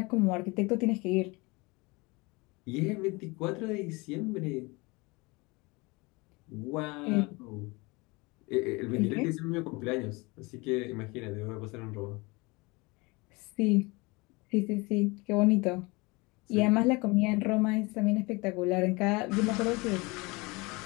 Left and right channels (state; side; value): quieter; right; 25.5 dB